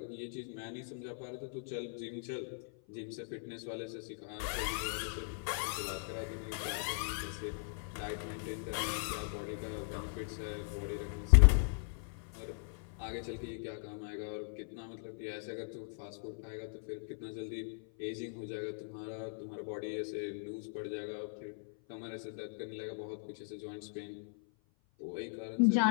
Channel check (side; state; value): right; silent; 52 dB below the other